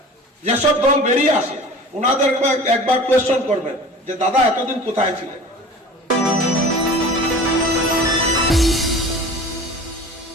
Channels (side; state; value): both; normal; correlation 0.40